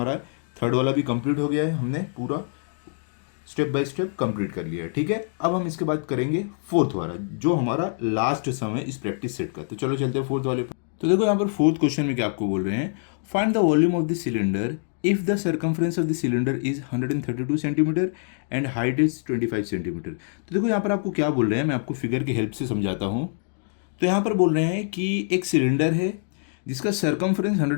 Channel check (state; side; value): silent; right; 62 dB below the other